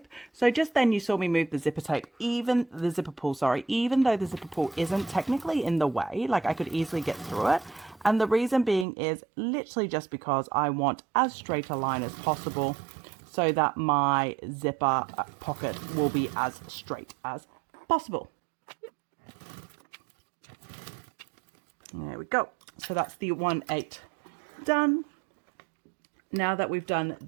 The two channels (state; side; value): drops out; left; at 8.8 s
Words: So just then you saw me move the zipper tape, even though the zipper pull isn't technically in the way, like I could easily get through it. And the reason being is literally just because I want as straight a line as possible so that my zipper pocket will be as straight as possible. There we go. So that's the 1/8 done. Now that we've done